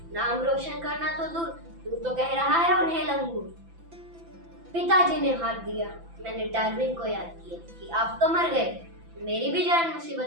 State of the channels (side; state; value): left; late; 5.9 ms